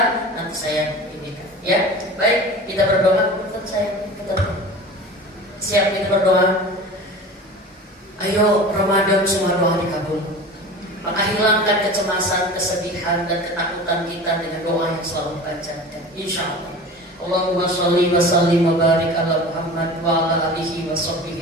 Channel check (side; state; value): both; normal; correlation 0.36